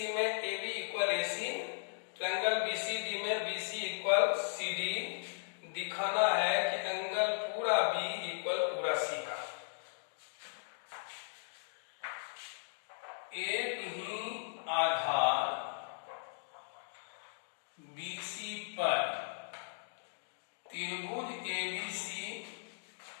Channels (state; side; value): silent; right; digital silence